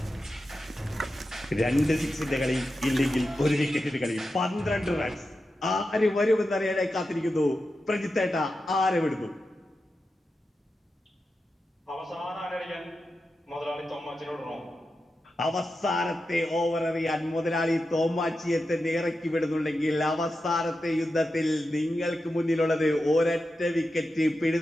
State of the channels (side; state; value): both; normal; correlation 0.90